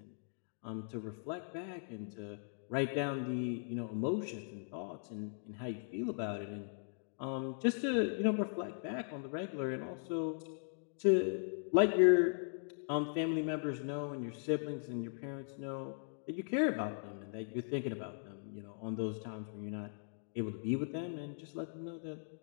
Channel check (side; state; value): right; silent; digital silence